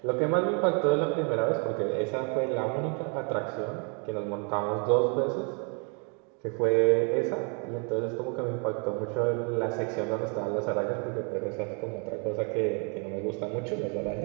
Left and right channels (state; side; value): quieter; left; 36.5 dB